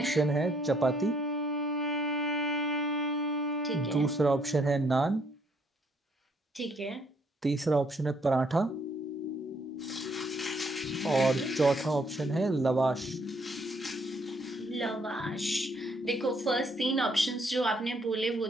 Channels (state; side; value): normal; both; correlation 0.68